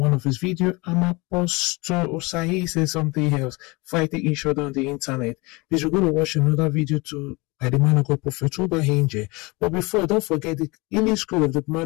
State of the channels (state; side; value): quieter; right; 25.5 dB